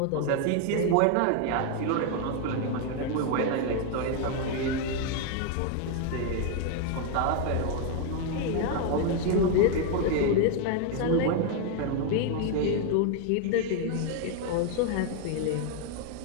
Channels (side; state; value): both; different; correlation 0.01